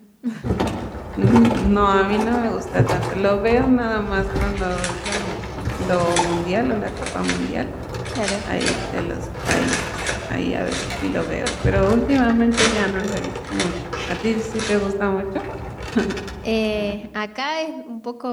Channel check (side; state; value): both; identical; correlation 1.00